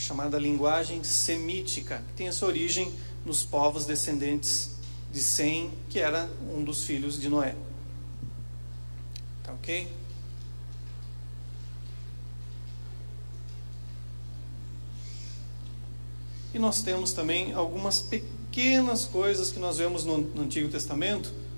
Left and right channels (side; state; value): both; inverted; correlation -1.00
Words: linguagem semítica, que tem a sua origem nos povos descendentes de Sem, que era um dos filhos de Noé. Tá ok? E nós temos também algumas pequenas coisas que nós vemos no Antigo Testamento,